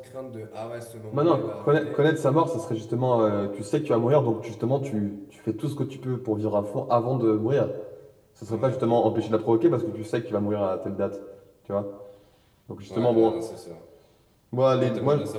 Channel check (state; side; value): identical; both; correlation 1.00